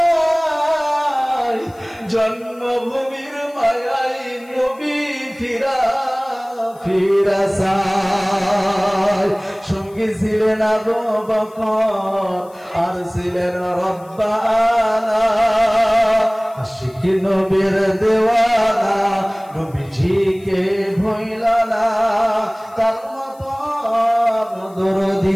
জন্মভূমির মায়াই নবী ফিরা ফিরা চায় সঙ্গী ছিলেন আবু বকর আর ছিলেন রব্বানা আশিক নবীর দেওয়ানা নবীজিকে ভুইলা না তার মতো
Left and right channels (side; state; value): left; noise; hiss, 28 dB below the sound